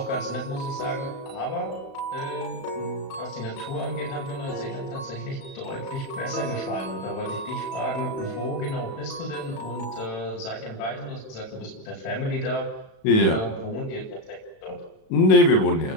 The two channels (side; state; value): right; late; 36 ms